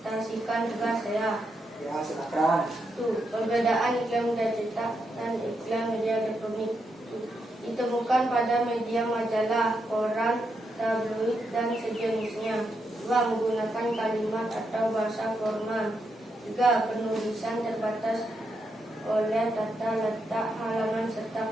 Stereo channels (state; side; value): normal; both; correlation 0.82